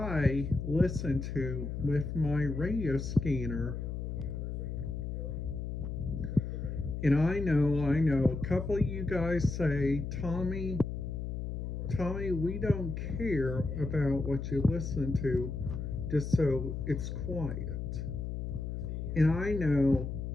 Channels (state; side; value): noise; left; hum, 4 dB below the sound